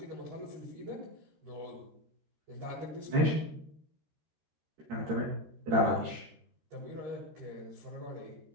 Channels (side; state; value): left; late; 13 ms